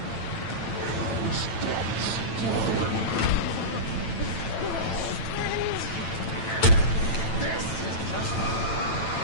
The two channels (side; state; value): right; late; 9.0 ms